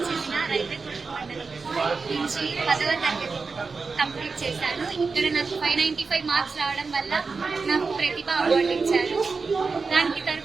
చెందిన రైల్వే కోట మండలం నుంచి 10వ తరగతి కంప్లీట్ చేశాను. ఇక్కడ నాకు 595 మార్క్స్ రావడం వల్ల నాకు ప్రతిభ అవార్డు ఇచ్చారు. దానికి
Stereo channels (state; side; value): quieter; left; 4.5 dB